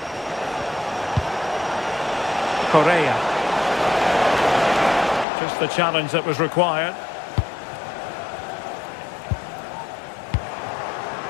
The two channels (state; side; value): drops out; right; at 5.2 s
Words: Correa. Just the challenge that was required.